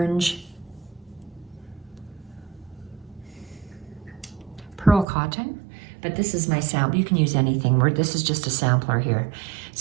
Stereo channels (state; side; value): drops out; left; at 5.1 s